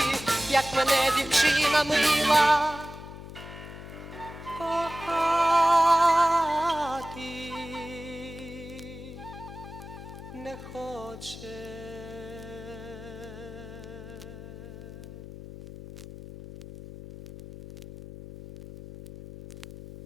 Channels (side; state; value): left; noise; hum, 13 dB below the sound